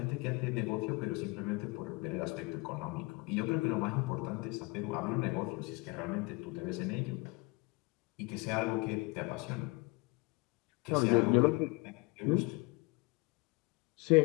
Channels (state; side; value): quieter; right; 26.5 dB